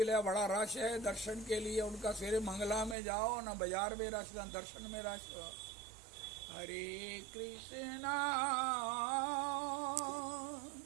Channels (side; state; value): left; drops out; at 3.0 s